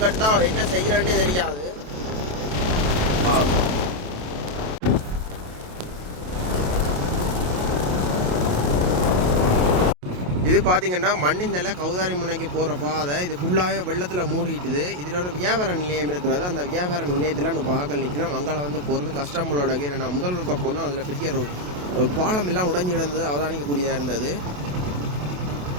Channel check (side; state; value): left; late; 28 ms